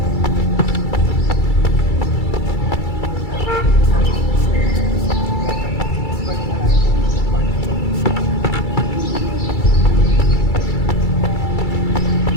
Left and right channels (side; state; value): right; late; 2.3 ms